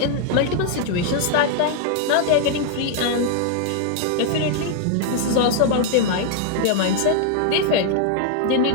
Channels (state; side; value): different; both; correlation 0.00